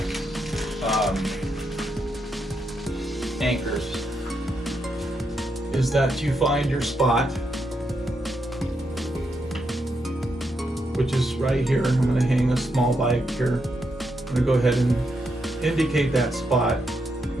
anchors is that you find your spot, which is right here. I'm going to hang a small bike here. I'm going to go ahead and indicate that spot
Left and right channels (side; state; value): both; normal; correlation 0.81